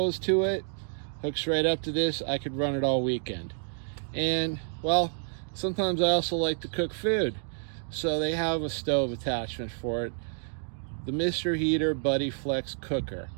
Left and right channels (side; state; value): left; silent; digital silence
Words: to it. Hooks right up to this. I could run it all weekend. And, well, sometimes I also like to cook food, so they have a stove attachment for it, the Mr. Heater Buddy Flex Cooker.